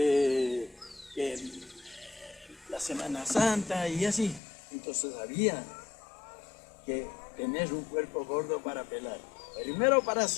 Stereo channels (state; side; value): drops out; right; at 4.4 s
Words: la Semana Santa y así. Entonces había que tener un puerco gordo para pelar. Primero para